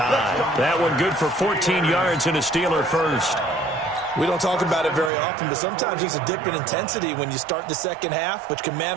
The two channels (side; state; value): left; drops out; at 5.1 s